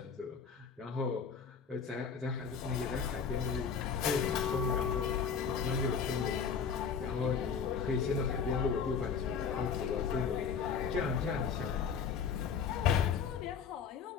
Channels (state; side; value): quieter; right; 6.4 dB